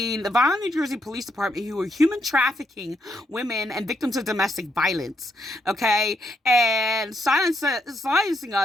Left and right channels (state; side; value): normal; both; correlation 0.78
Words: the Vineland, New Jersey Police Department, who were human trafficking women and victims of domestic violence. Okay, and silencing